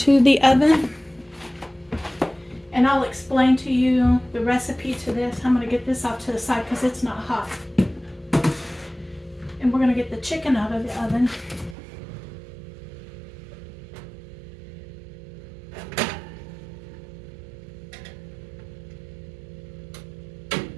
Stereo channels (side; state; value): left; drops out; at 11.8 s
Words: the oven. And I'll explain to you the recipe to this. I'm going to get this off to the side because it's not hot. And we're going to get the chicken out of the oven.